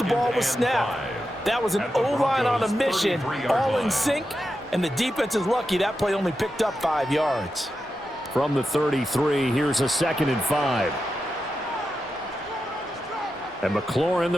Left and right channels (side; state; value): both; normal; correlation 0.89